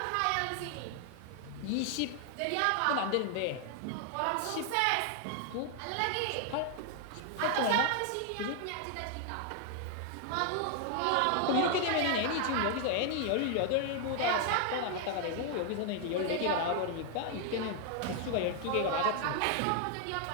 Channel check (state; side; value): different; both; correlation 0.00